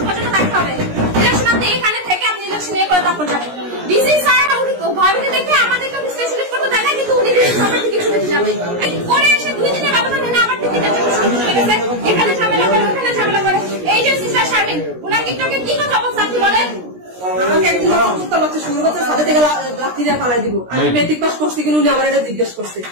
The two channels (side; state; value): left; late; 17 ms